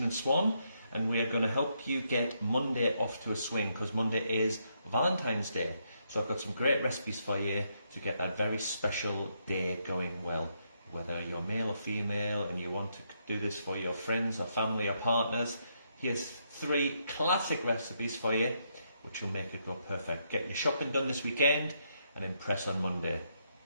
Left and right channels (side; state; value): both; inverted; correlation -0.77